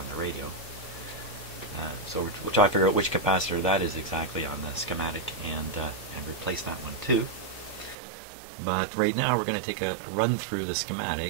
the radio. So we'll try to figure out which capacitor that is exactly on the schematic and replace that one too. But right now we're going to take a run through the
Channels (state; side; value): drops out; left; at 8.0 s